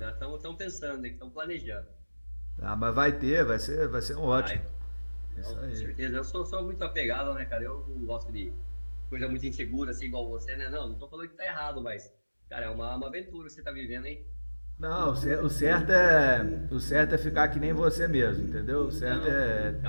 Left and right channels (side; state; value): both; inverted; correlation -1.00